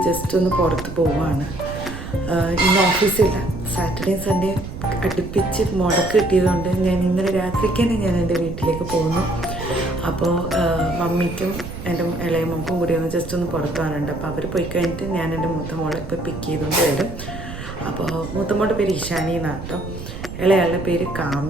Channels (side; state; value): right; noise; rumble, 10 dB below the sound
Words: ജസ്റ്റ് ഒന്ന് പുറത്ത് പോവുകയാണ്. ഇന്ന് ഓഫീസില്ല, സാറ്റർഡേ സൺഡേ അടുപ്പിച്ച് മുടക്ക് കിട്ടിയതുകൊണ്ട് ഞാൻ ഇന്നലെ രാത്രിക്ക് തന്നെ ഞാൻ എൻ്റെ വീട്ടിലേക്ക് പോകുന്നു. അപ്പോൾ മമ്മിക്കും എൻ്റെ ഇളയ മോൾക്കും കൂടി ഒന്ന് ജസ്റ്റ് ഒന്ന് പുറത്ത് പോകാനുണ്ട്. അപ്പോൾ അവർ പോയി കഴിഞ്ഞിട്ട് ഞാൻ എൻ്റെ മൂത്ത മോളെ ഇപ്പോൾ പിക്ക് ചെയ്തുകൊണ്ട് വരും. അപ്പോൾ മൂത്ത മോളുടെ പേര് ഇഷാനി എന്നാണ് കേട്ടോ, ഇളയാളുടെ പേര്